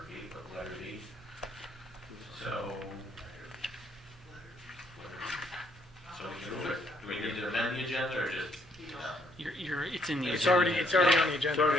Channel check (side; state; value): both; normal; correlation 0.69